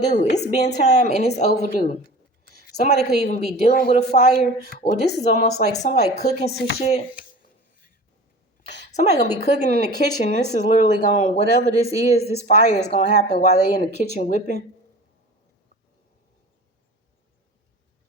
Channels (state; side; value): normal; both; correlation 0.38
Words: It's been time and it's overdue. Somebody could even be dealing with a fire, or this is almost like somebody cooking some shit. Somebody gonna be cooking in the kitchen. This is literally going, whatever this is, this fire is gonna happen while they in the kitchen whipping.